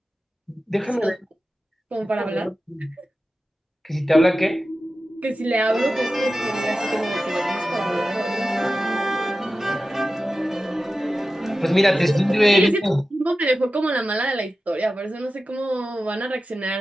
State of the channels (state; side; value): normal; both; correlation 0.94